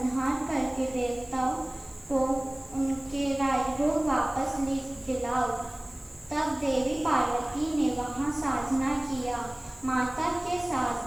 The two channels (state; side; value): noise; left; hiss, 25 dB below the sound